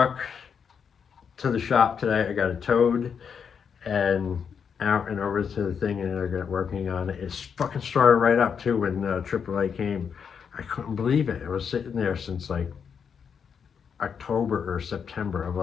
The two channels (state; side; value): quieter; right; 6.9 dB